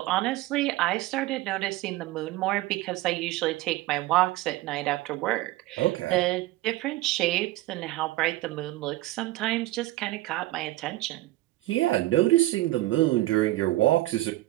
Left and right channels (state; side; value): quieter; left; 17.3 dB